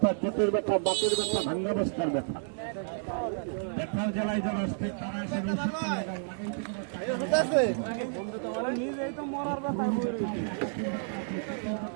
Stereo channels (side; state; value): left; silent; digital silence